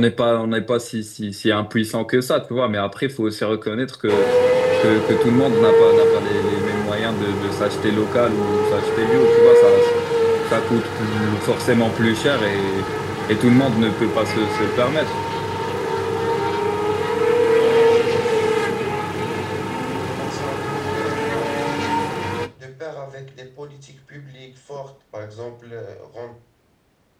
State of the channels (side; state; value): both; identical; correlation 1.00